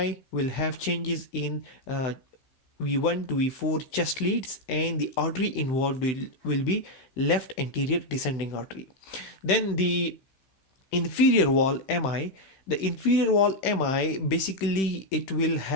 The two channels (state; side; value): late; right; 15 ms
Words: will have changes in V1 to V4 chest leads, and the artery involved will be left anterior descending artery. Then the inferior wall MI, the inferior wall MI, basically it will